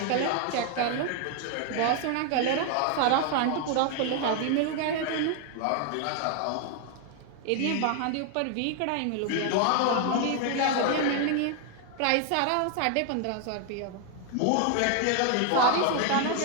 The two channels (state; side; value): different; both; correlation 0.00